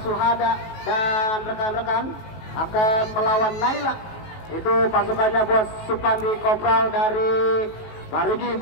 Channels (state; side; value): late; right; 18 ms